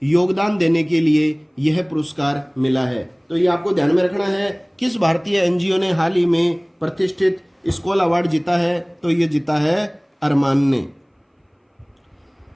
योगदान देने के लिए यह पुरस्कार मिला है। तो ये आपको ध्यान में रखना है, किस भारतीय एनजीओ ने हाल ही में प्रतिष्ठित स्कॉल अवार्ड जीता है, तो ये जीता है अरमान ने।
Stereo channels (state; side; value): identical; both; correlation 1.00